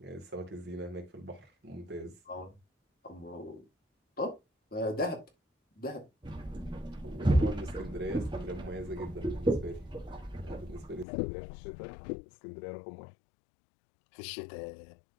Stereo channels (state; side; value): drops out; right; at 11.1 s